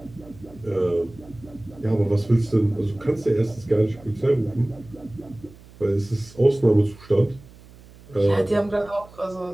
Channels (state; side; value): noise; right; hum, 22 dB below the sound